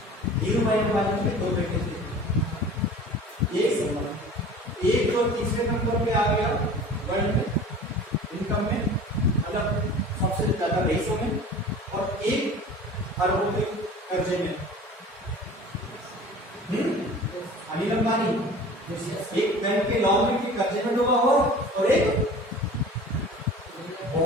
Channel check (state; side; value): normal; both; correlation 0.41